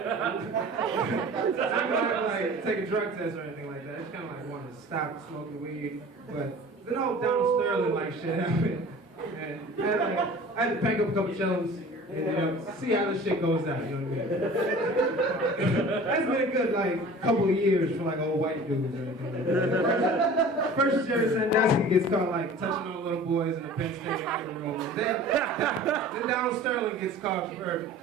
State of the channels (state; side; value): normal; both; correlation 0.42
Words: not like take a drug test or anything like that. I just kind of like wanted to stop smoking weed, but the whole Donald Sterling like shit happened, and I had to pack up a couple chillums and see how this shit goes down. You know what I mean? That's been a good like couple of years for like old white dudes or anything like that. First Jerry Sandusky gets caught like touching on little boys in the Penn State locker room. Then Donald Sterling gets caught for